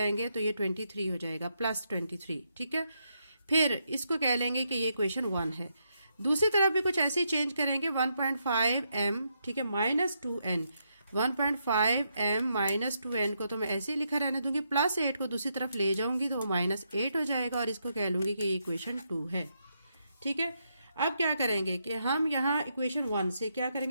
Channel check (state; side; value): inverted; both; correlation -0.80